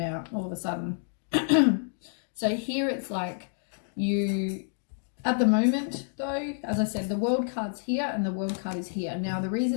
out all of a sudden. So here it's like you At the moment, though, as I said, the World card's here and the World card is here. Now, the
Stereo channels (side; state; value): right; silent; digital silence